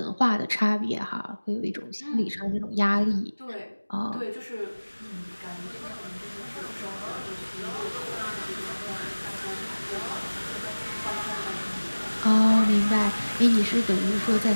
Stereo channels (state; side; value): inverted; both; correlation -1.00